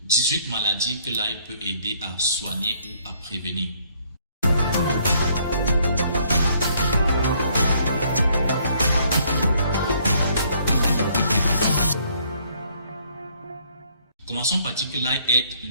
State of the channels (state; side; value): inverted; both; correlation -0.64